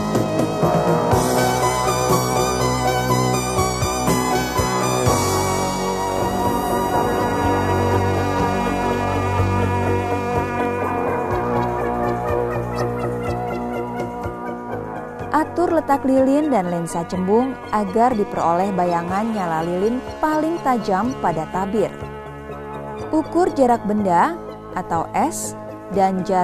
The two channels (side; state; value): both; identical; correlation 1.00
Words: Atur letak lilin dan lensa cembung agar diperoleh bayangan nyala lilin paling tajam pada tabir. Ukur jarak benda atau S dan